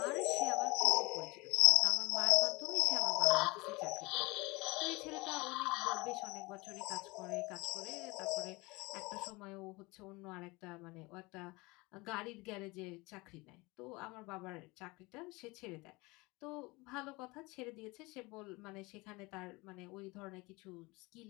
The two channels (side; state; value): right; quieter; 24.2 dB